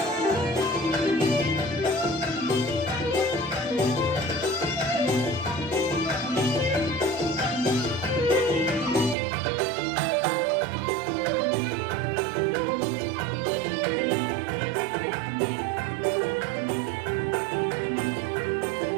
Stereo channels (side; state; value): left; drops out; at 9.2 s